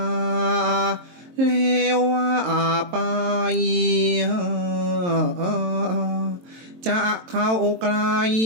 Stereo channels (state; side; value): late; left; 23 ms